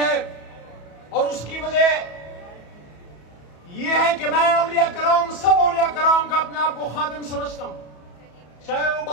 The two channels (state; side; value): late; right; 34 ms